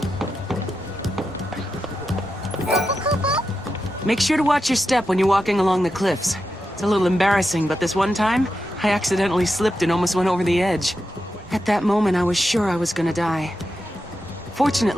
Make sure to watch your step when you're walking along the cliffs. It's a little embarrassing, but this one time, I accidentally slipped and almost went over the edge. At that moment, I was sure I was gonna die.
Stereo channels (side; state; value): both; normal; correlation 0.88